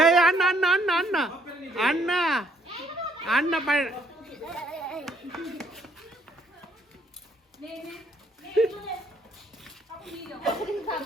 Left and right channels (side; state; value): both; normal; correlation 0.66